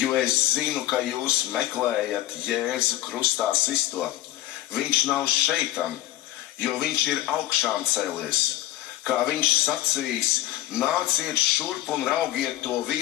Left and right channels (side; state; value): right; quieter; 14.9 dB